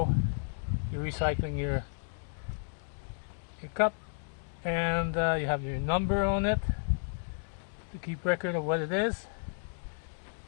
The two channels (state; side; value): silent; right; digital silence